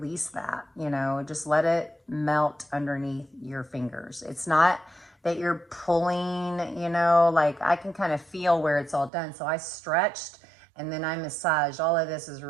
that, just let it melt underneath your fingers. It's not that you're pulling, like I can kind of feel where it's all done. So I stretched and then I massaged. All of this is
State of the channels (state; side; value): drops out; left; at 9.1 s